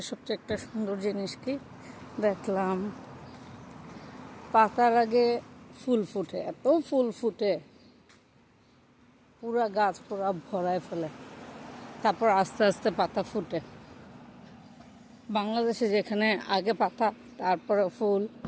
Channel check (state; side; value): identical; both; correlation 1.00